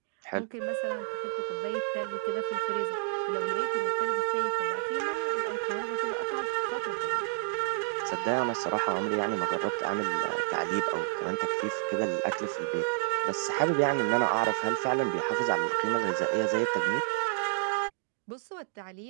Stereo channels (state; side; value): silent; left; digital silence